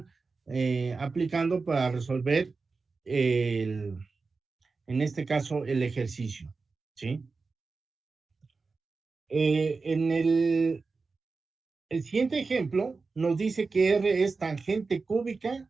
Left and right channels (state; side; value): quieter; left; 4.3 dB